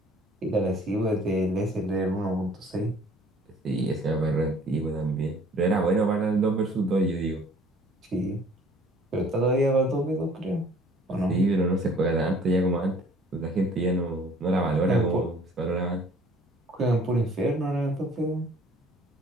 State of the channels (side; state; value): both; normal; correlation 0.54